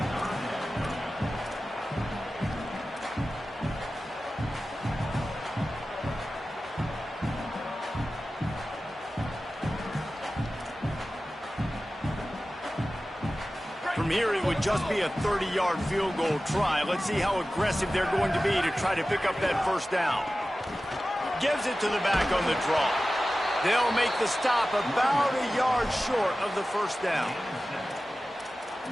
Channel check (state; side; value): normal; both; correlation 0.95